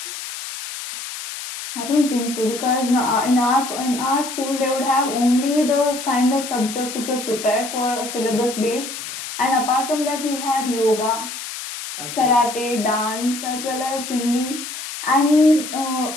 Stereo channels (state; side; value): noise; left; hiss, 8 dB below the sound